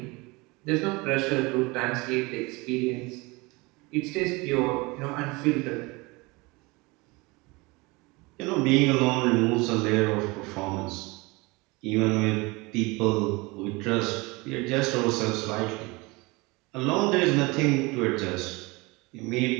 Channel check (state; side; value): quieter; left; 24.8 dB